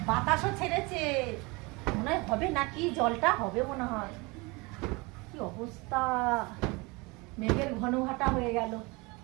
বাতাসও ছেড়েছে, মনে হয় হবে নাকি, জলটা হবে মনে হয়। কি অবস্থা, মেঘের ঘন ঘাটা হয়ে গেল।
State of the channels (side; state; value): left; quieter; 26.2 dB